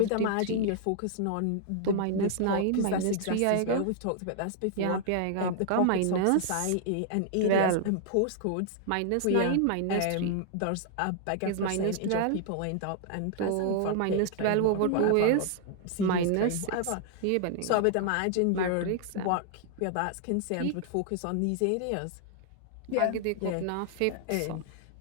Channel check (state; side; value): different; both; correlation 0.00